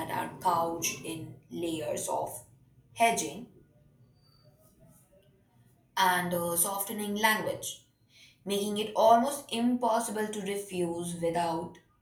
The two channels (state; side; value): identical; both; correlation 1.00